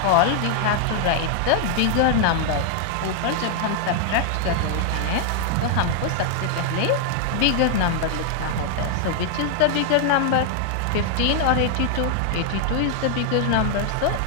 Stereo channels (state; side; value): different; both; correlation 0.00